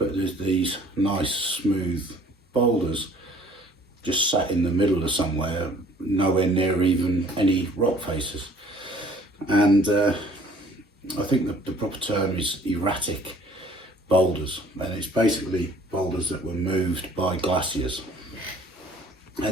there's these nice smooth boulders just sat in the middle of somewhere, nowhere near even any rock faces. And I think the proper term is erratic boulders, and it's basically boulders that were moved by glaciers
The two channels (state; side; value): normal; both; correlation 0.55